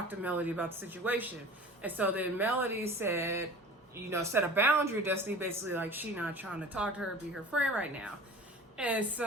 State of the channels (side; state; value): both; normal; correlation 0.41